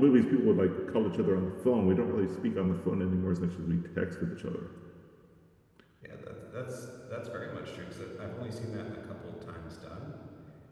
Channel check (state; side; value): identical; both; correlation 1.00